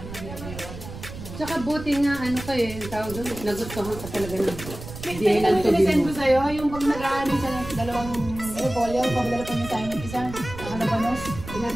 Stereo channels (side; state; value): right; noise; rumble, 11 dB below the sound